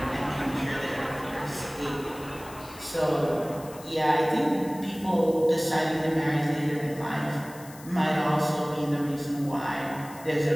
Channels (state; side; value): noise; left; hiss, 19 dB below the sound